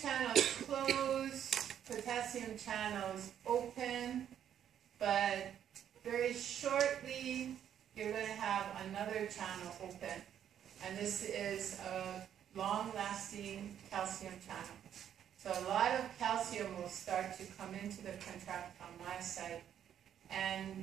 close, potassium channels open, but very shortly you're going to have another channel open, and this is a long-lasting calcium channel. So a lot of calcium will start to come into the contractile myocyte,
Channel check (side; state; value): left; quieter; 9.7 dB